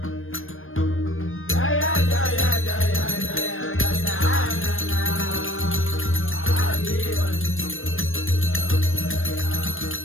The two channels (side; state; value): right; late; 0.59 ms